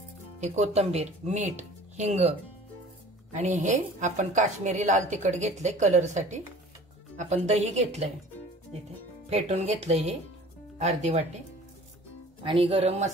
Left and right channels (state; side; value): normal; both; correlation 0.46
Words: हे कोथिंबीर, मीठ, हिंग आणि हे आपण काश्मीरी लाल तिखट घेतले कलर साठी, आपण दही घेतलंय इथे फेटून घेतलंय हे अर्धी वाटी, आणि गरम